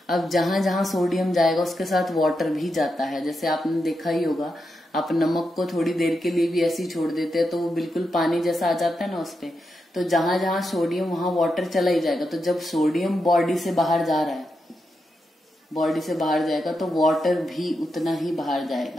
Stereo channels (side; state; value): both; normal; correlation 0.86